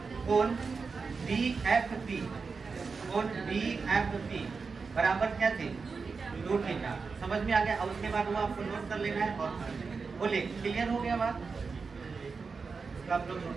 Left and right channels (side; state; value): left; quieter; 4.8 dB